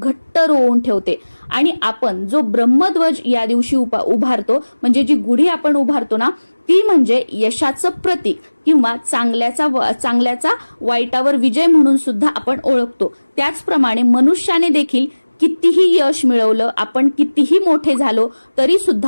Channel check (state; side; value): inverted; both; correlation -1.00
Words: रोवून ठेवते. आणि आपण जो ब्रह्मध्वज या दिवशी उभारतो, म्हणजे जी गुढी आपण उभारतो ना, ती म्हणजे यशाचं प्रतीक किंवा चांगल्याचा वाईटावर विजय म्हणून सुद्धा आपण ओळखतो. त्याचप्रमाणे मनुष्याने देखील कितीही यश मिळवलं, आपण कितीही मोठे झालो तरी